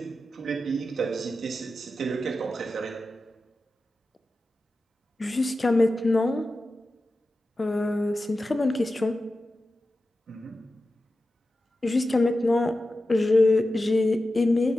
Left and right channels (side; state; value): both; normal; correlation 0.93